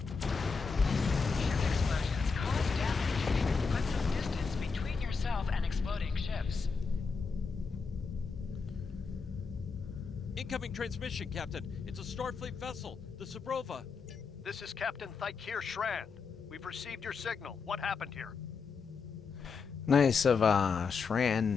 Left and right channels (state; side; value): quieter; right; 5.1 dB